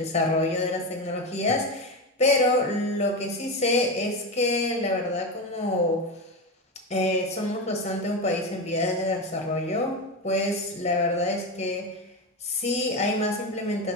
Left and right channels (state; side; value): normal; both; correlation 0.17